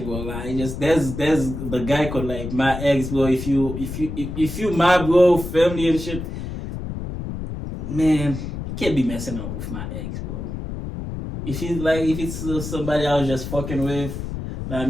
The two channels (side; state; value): left; noise; rumble, 7 dB below the sound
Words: bro. Like, just there's the guy called like my ex, bro. If you my bro, family and shit, man, you can't be messing up with my ex, bro. If it's somebody I was just fucking with. I